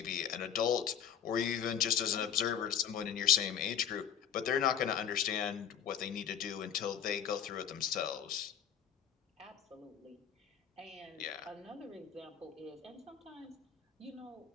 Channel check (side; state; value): right; quieter; 8.6 dB